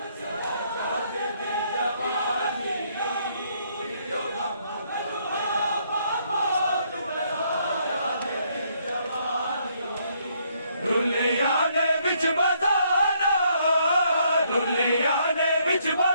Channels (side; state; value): both; inverted; correlation -0.70